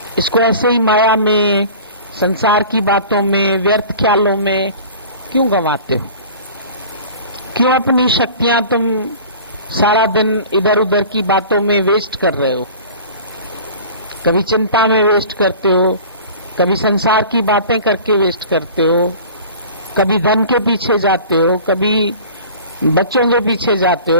इसको ऐसे ही माया में, संसार की बातों में, व्यर्थ ख्यालों में क्यों गंवाते हो? क्यों अपनी शक्तियां तुम सारा दिन इधर उधर की बातों में वेस्ट कर रहे हो? कभी चिंता में वेस्ट करते हो, कभी संसार की बातें करके वेस्ट करते हो, कभी धन के पीछे जाते हो, कभी बच्चों के पीछे जाते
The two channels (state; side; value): inverted; both; correlation -0.42